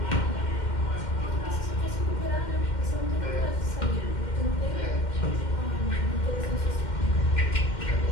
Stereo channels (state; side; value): late; right; 2.1 ms